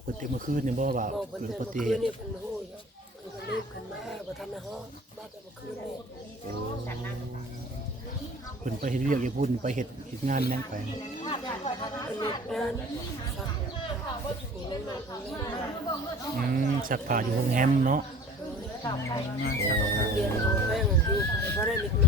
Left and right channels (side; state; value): both; normal; correlation 0.45